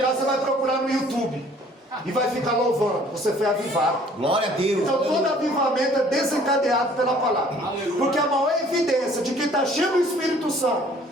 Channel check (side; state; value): both; normal; correlation 0.55